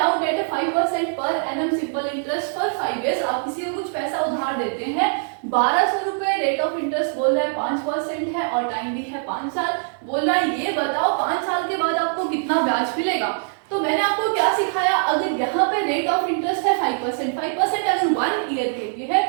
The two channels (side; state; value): left; silent; digital silence